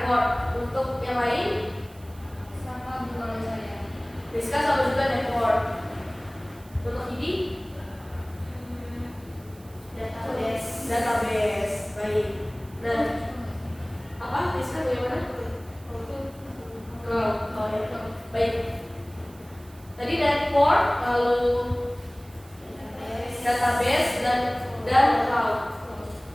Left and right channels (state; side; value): noise; right; hiss, 25 dB below the sound